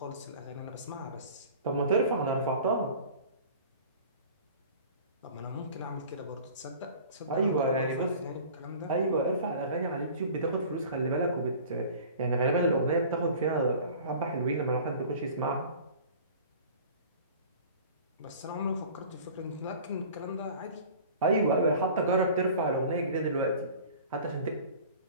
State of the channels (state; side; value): inverted; both; correlation -0.43